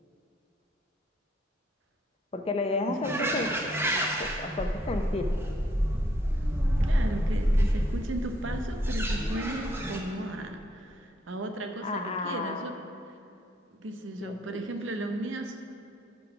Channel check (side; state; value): both; normal; correlation 0.69